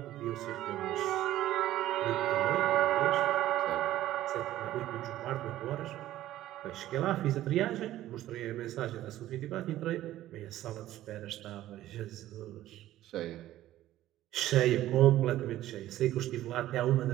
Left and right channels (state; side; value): quieter; left; 14.1 dB